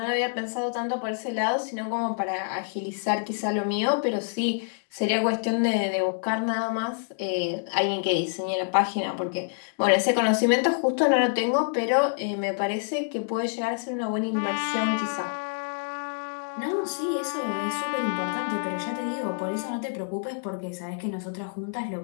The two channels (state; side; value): silent; right; digital silence